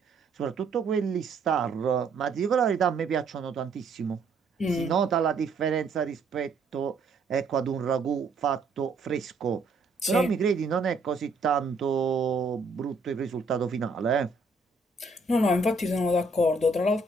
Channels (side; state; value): left; quieter; 3.4 dB